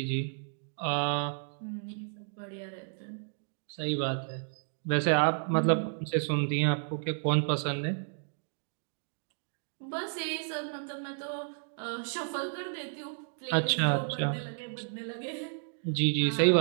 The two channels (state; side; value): silent; left; digital silence